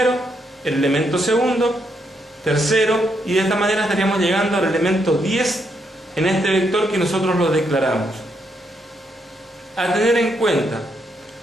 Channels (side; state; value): both; normal; correlation 0.77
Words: el elemento segundo, tercero, y de esta manera estaríamos llegando al elemento 10 en este vector que nosotros lo declaramos. A tener en cuenta,